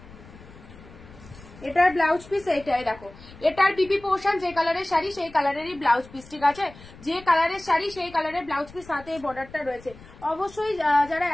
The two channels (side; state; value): left; noise; rumble, 20 dB below the sound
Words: এটার ব্লাউজ পিস এইটাই দেখো, এটার বিপি পোর্শন যে কালারের শাড়ি সেই কালারেরই ব্লাউজ পিস, ঠিক আছে? যে কালারের শাড়ি সেই কালারের ব্লাউজ পিস, সাথে এই বর্ডারটা রয়েছে। অবশ্যই যারা